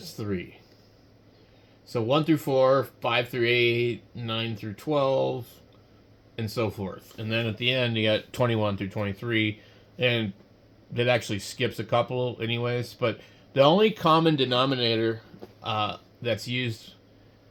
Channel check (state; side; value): identical; both; correlation 1.00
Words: 3. So 1 through 4, 5 through 8, 9 through 12, and so forth. And then at the end, you got 21 through 23, and that actually skips a couple anyways. But the only common denominator that's used